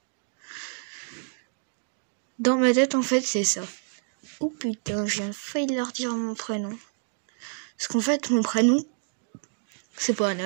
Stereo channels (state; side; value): silent; left; digital silence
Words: Dans ma tête, en fait, c'est ça. Oh putain, j'ai failli leur dire mon prénom. Parce qu'en fait, mon prénom, c'est pas